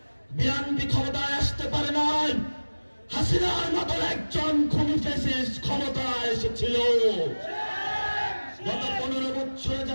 বিএনপি ক্ষমতায় আসতে পারে নাই। হাসিনার মতো একজন খুনি ফ্যাসিস্ট ক্ষমতায় এসেছিল। গত 15 বছরে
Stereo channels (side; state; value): both; inverted; correlation -1.00